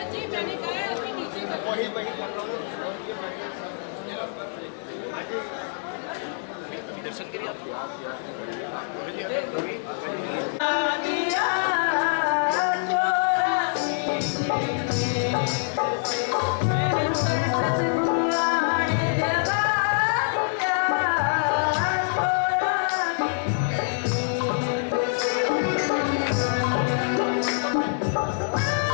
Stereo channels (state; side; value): silent; right; digital silence